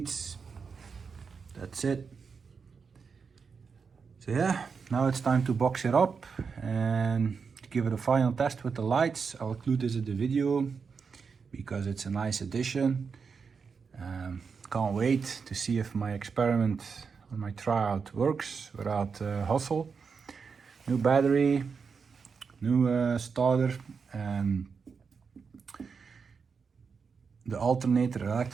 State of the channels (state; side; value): quieter; left; 5.6 dB